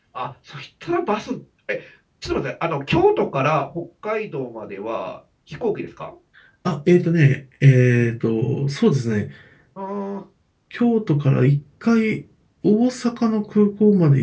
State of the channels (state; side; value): identical; both; correlation 1.00